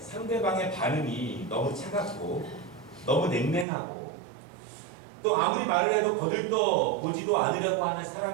반응이 너무 차갑고 너무 냉랭하고 또 아무리 말을 해도 거들떠 보지도 않으려고 하는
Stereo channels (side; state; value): left; drops out; at 3.7 s